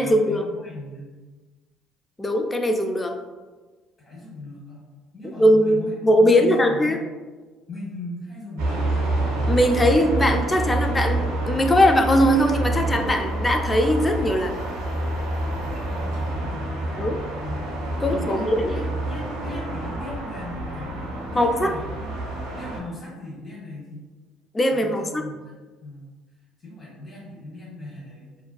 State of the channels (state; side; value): normal; both; correlation 0.78